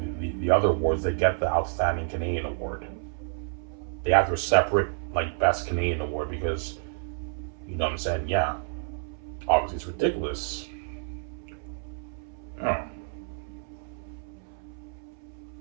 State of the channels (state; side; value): silent; left; 59 dB below the other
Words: the other awards. They get the Outstanding Canadian Award. They have their separate like Best Canadian Award because you know what I'm saying? Yeah, obviously it's ridiculous. Oh.